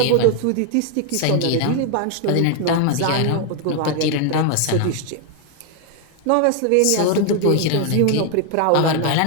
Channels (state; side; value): different; both; correlation 0.00